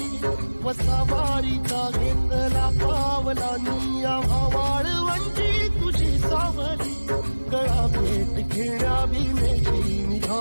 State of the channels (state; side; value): inverted; both; correlation -1.00